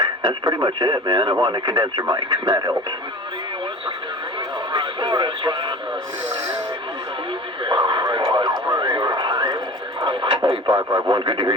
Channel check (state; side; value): normal; both; correlation 0.37